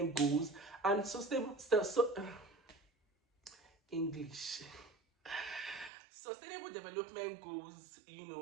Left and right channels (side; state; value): left; drops out; at 5.9 s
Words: Goals, and English. Sustainable Development Goals,